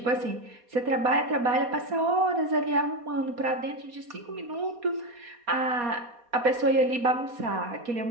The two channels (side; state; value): left; late; 4.2 ms